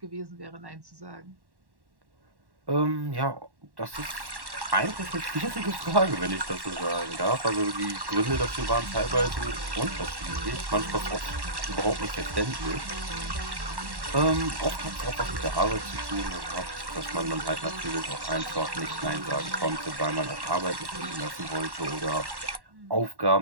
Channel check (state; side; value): late; left; 1.1 ms